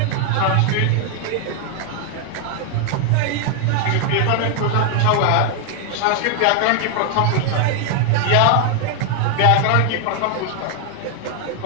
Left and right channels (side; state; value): both; different; correlation 0.00